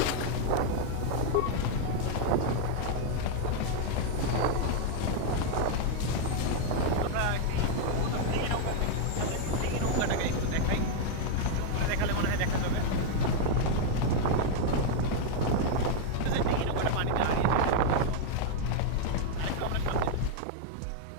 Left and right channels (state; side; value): different; both; correlation 0.00